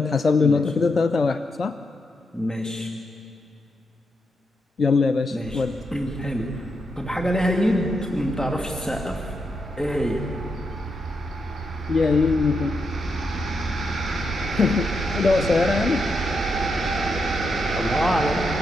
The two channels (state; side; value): normal; both; correlation 0.83